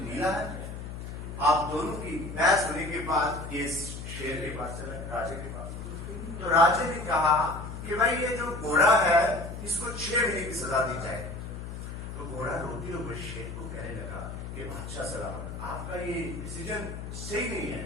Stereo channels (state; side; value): noise; left; hum, 8 dB below the sound